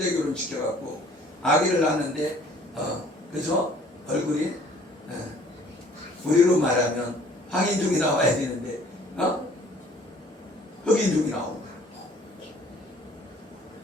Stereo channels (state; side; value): normal; both; correlation 0.55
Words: 결혼 시켜갖고 아기를 낳는데 그죠? 얼굴이 우리로 말하면 황인종이 나와야 되는데 흑인종이 나온 거야.